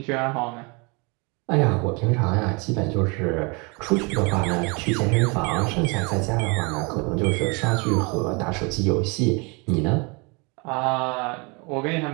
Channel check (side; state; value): left; quieter; 29.9 dB